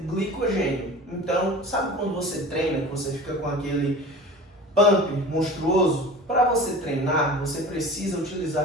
glicogênio. Então, sabe quando você treina, que você fica com aquele pump monstruoso? Para você treinar, você precisa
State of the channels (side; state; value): both; normal; correlation 0.37